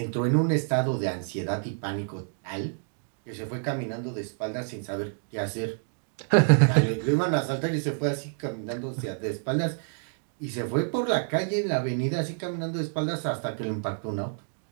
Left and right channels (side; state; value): left; silent; digital silence